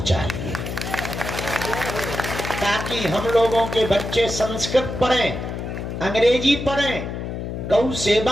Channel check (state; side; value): noise; left; hum, 5 dB below the sound